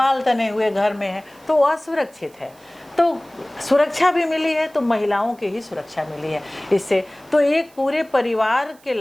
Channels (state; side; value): noise; right; hiss, 28 dB below the sound